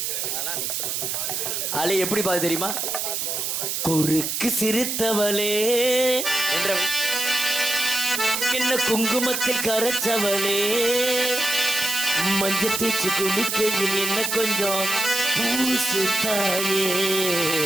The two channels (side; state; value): right; noise; hiss, 1 dB below the sound